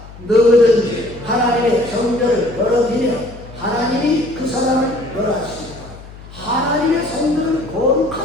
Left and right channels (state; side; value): noise; left; hum, 17 dB below the sound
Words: 누구든지 하나님의 성전을 더럽히면 하나님이 그 사람을 멸하십니다. 하나님의 성전을